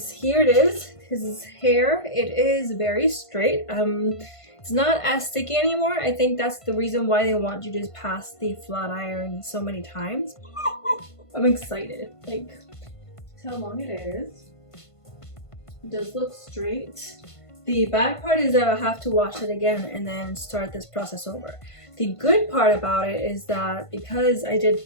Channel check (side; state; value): right; late; 1.5 ms